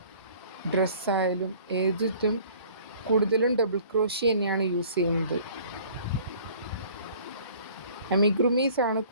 ഡ്രസ്സായാലും ഏതിട്ടും കൂടുതലും ഡബിൾ ക്രോഷ്യ തന്നെയാണ് യൂസ് ചെയ്യുന്നത്. അമിഗ്രുമീസാണ്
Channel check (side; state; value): both; inverted; correlation -0.52